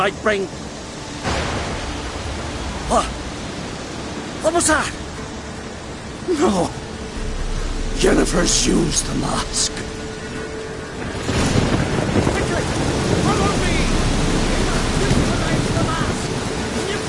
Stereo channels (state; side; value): identical; both; correlation 1.00